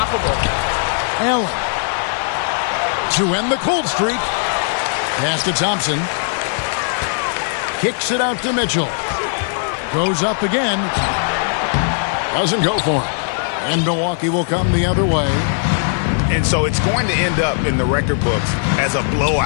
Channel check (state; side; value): silent; right; digital silence